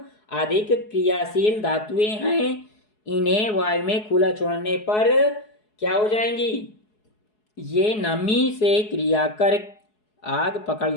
अधिक क्रियाशील धातुएं हैं। इन्हें वायु में खुला छोड़ने पर क्या हो जाएंगी? ये नमी से क्रिया कर आग पकड़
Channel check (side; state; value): right; late; 4.7 ms